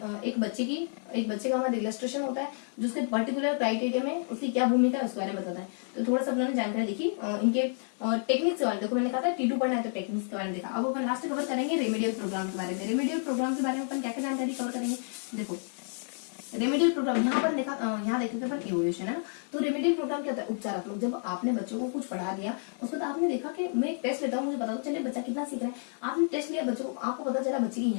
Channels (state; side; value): silent; right; 58 dB below the other